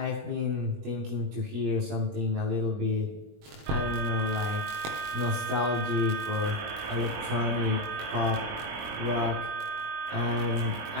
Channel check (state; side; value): late; left; 20 ms